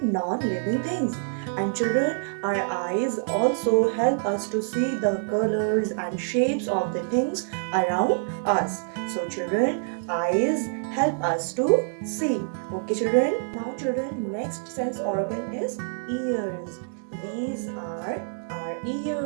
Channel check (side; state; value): left; silent; digital silence